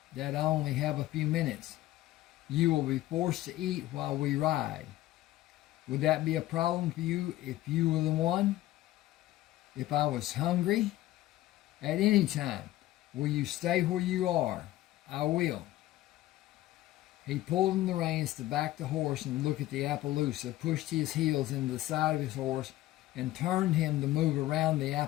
that I only have a few minutes. You will be forced to eat while we ride. Would that be a problem for you if you were the one? If I was hungry? At any time. Will you stay where you are? I will. He pulled in the reins to back the horse and look at the Appaloosa, pushed his heels into the side of his horse, and turned him to move around the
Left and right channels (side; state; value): right; quieter; 15.7 dB